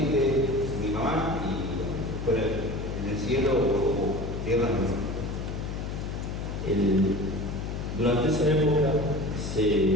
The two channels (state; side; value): noise; left; hum, 5 dB below the sound